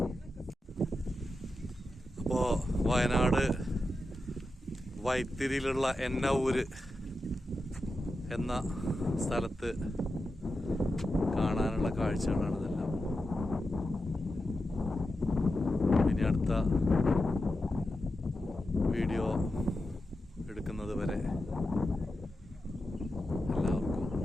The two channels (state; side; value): normal; both; correlation 0.90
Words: അപ്പോൾ വയനാട് വൈത്തിരിയിലുള്ള എന്നൂര് എന്ന സ്ഥലത്ത് കാണാനുള്ള കാഴ്ചകളാണ് ഇതെല്ലാം. ഇനി അടുത്ത വീഡിയോ എടുക്കുന്നത് വരെ എല്ലാവർക്കും